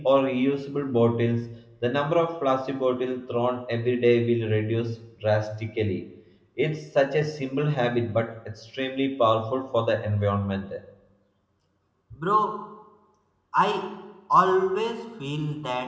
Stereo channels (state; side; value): identical; both; correlation 1.00